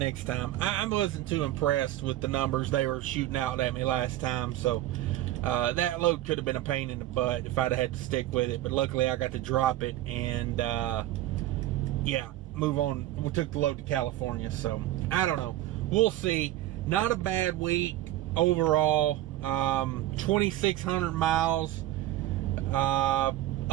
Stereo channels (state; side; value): quieter; left; 14.5 dB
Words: time. I wasn't too impressed with the numbers they were shooting out at me last time, so that load could have been a pain in the butt if I'd have had to stick with it, but luckily I got to drop it and yeah, move on. We took the load to California, so I don't know. We'll see. Not a bad week overall. 2,600 miles.